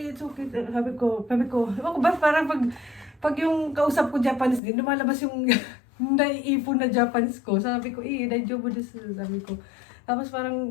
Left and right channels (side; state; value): right; drops out; at 4.6 s